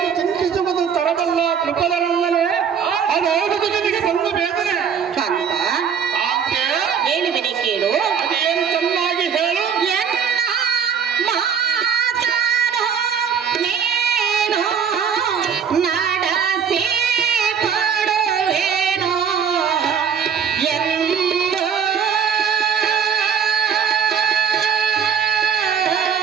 ಚಿಂತಿಸುವುದು ತರಬಲ್ಲ ಕೃಪದನಲ್ಲೇ ಅದಾಗುವುದು ನಿನಗೆ ಬಂದ ವೇದನೆ. ಕಾಂತ ಆಕೆ ಹೇಳುವಿನಿ ಕೇಳು. ಅದೇನು ಚೆನ್ನಾಗಿ ಹೇಳು.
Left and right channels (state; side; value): quieter; left; 7.3 dB